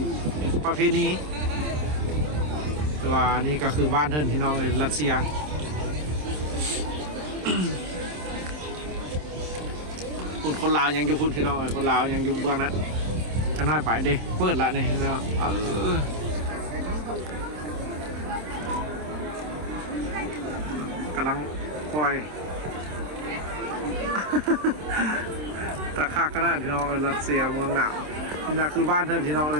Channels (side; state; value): left; late; 27 ms